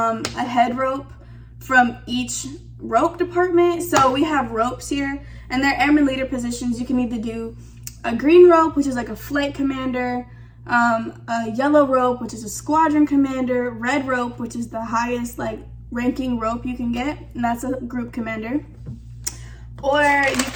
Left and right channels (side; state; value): both; identical; correlation 1.00